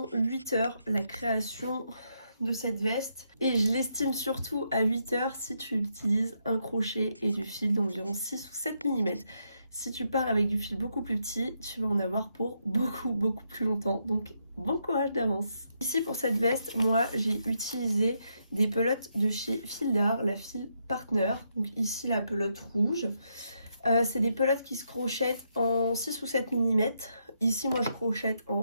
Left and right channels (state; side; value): inverted; both; correlation -0.79